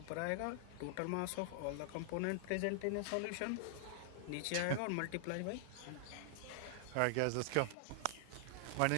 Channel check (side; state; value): both; different; correlation 0.00